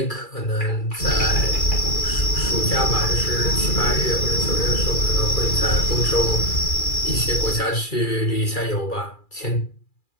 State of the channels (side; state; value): right; late; 2.4 ms